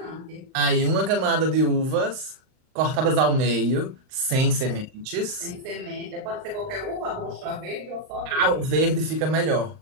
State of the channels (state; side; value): late; left; 38 ms